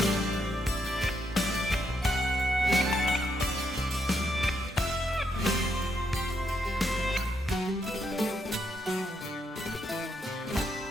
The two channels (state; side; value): normal; both; correlation 0.78